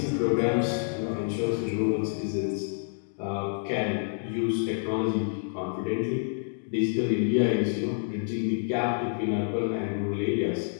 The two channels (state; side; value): silent; right; digital silence